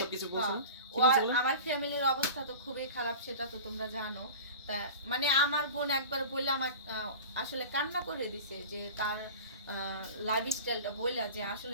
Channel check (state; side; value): inverted; both; correlation -0.35